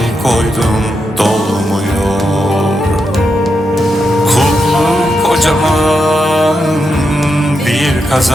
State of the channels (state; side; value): normal; both; correlation 0.85